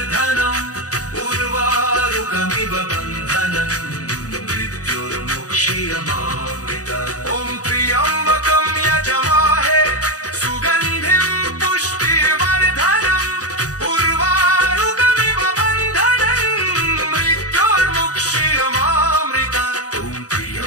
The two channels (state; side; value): late; right; 0.67 ms